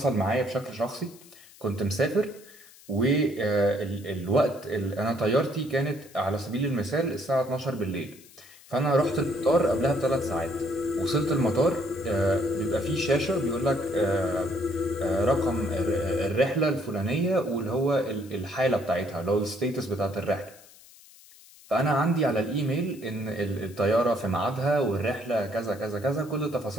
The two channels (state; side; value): noise; left; hiss, 23 dB below the sound